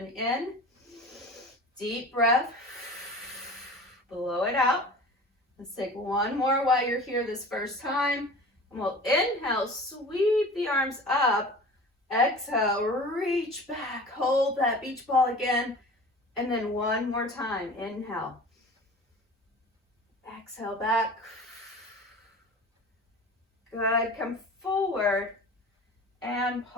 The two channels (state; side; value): normal; both; correlation 0.39